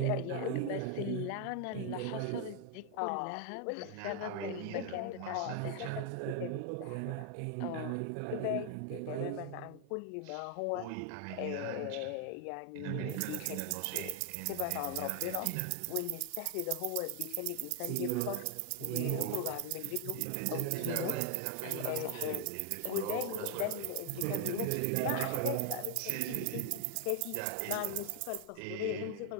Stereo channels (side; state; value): both; different; correlation 0.00